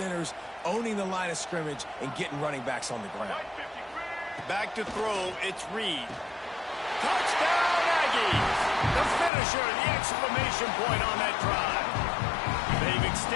owning the line of scrimmage, and getting running backs on the ground. Back to throw, it's Reed. Touchdown, Aggies! The finisher, the exclamation point on that drive. They've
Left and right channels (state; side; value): drops out; right; at 9.3 s